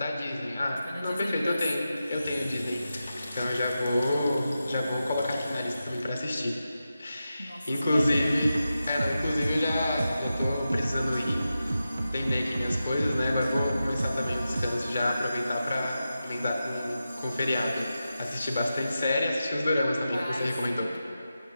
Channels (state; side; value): inverted; both; correlation -0.91